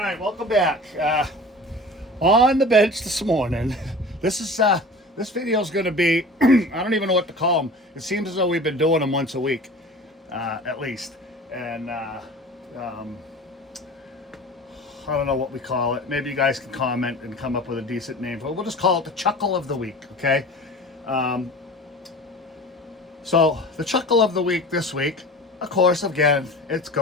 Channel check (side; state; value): both; normal; correlation 0.39